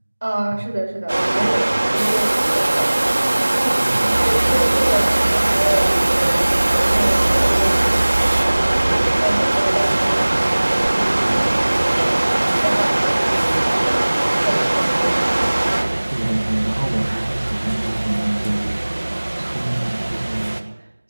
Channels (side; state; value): both; inverted; correlation -1.00